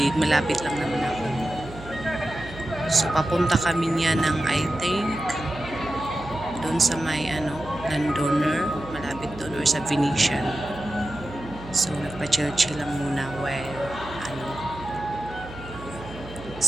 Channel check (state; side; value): noise; right; hum, 15 dB below the sound